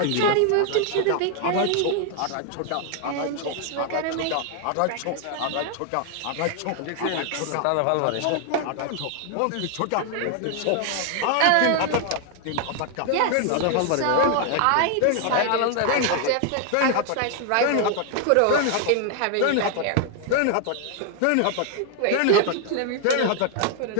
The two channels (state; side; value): different; both; correlation 0.00